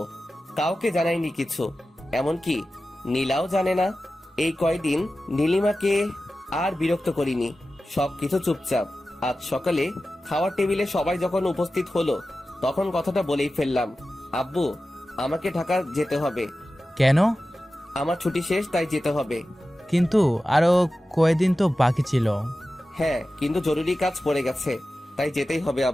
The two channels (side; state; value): both; normal; correlation 0.94